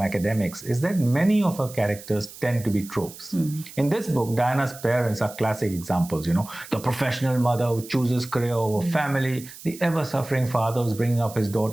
is that many of her characters tend to be tropes. In this book, Diana's parents are classic examples, the professional mother who chooses career over family, the ever-suffering father who's bringing up his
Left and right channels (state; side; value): noise; right; hiss, 16 dB below the sound